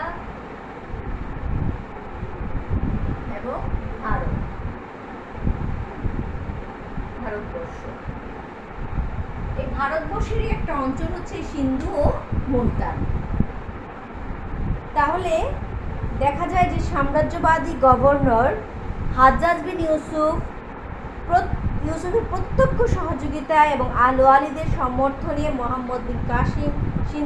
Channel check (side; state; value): both; identical; correlation 1.00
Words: এবং ভারতবর্ষ। এই ভারতবর্ষেরই একটা অঞ্চল হচ্ছে সিন্ধু ও মুলতান। তাহলে দেখা যায় যে সাম্রাজ্যবাদী গভর্নর হাজ্জাজ বিন ইউসুফের প্রত্যক্ষ সহযোগিতা এবং আল ওয়ালিদের সমর্থনে মোহাম্মদ বিন কাসিম